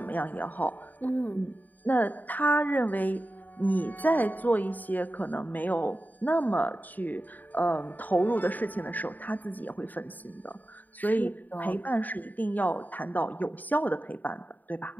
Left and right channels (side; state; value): right; late; 0.085 ms